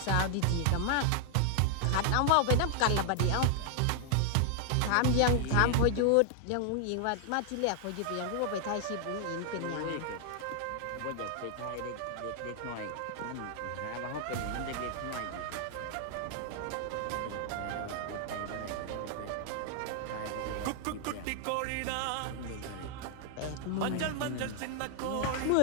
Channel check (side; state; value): both; different; correlation 0.00